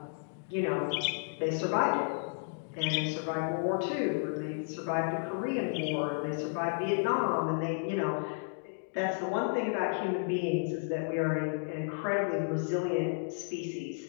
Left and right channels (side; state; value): right; silent; digital silence